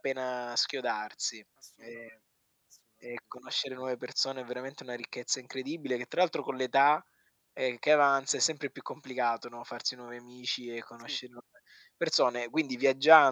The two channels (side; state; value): both; identical; correlation 1.00